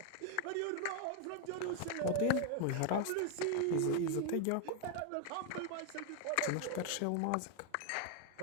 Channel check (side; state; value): both; different; correlation 0.00